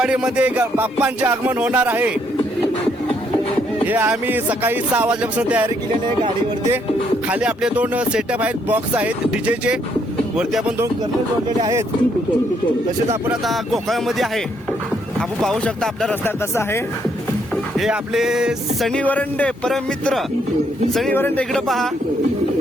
बाप्पांचे आगमन होणार आहे. हे आम्ही सकाळी 6 वाजल्यापासून तयारी केलेली आहे गाडीवरती. खाली आपले 2 सेटअप आहेत, बॉक्स आहेत डीजेचे. वरती आपण 2 कर्नल जोडलेले आहेत. तसेच आपण आता गोकाळमध्ये आहे. आपण पाहू शकता आपला रस्ता कसा आहे. हे आपले सनी वरंडे परम मित्र सनी वरंडे. इकडे पहा.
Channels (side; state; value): both; normal; correlation 0.72